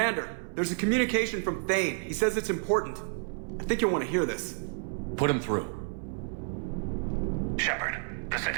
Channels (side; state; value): left; silent; 58 dB below the other